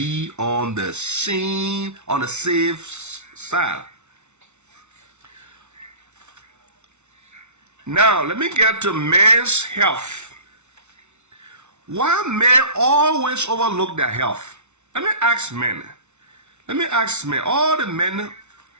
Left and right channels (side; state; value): left; late; 0.82 ms